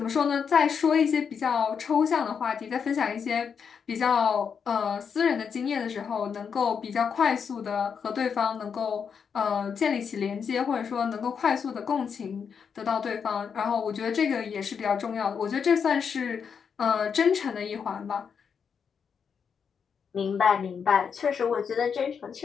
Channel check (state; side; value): quieter; right; 6.6 dB